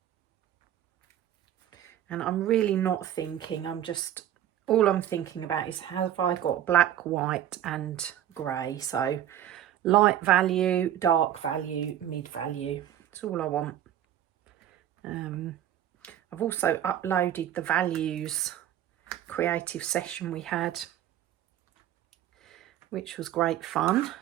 And I'm really not thinking, all I'm thinking about is, have I got black, white and grey? So light value, dark value, mid value. That's all I want. I've also uploaded the values creative session we had, which was great fun.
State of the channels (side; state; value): left; quieter; 11.5 dB